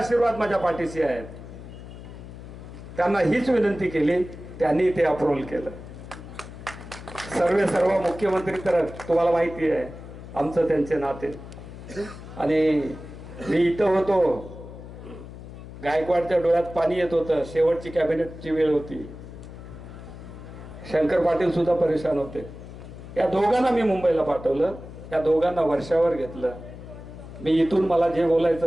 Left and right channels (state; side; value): noise; left; hum, 14 dB below the sound